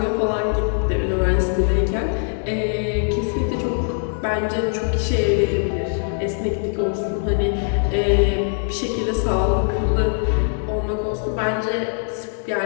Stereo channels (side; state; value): right; silent; 65 dB below the other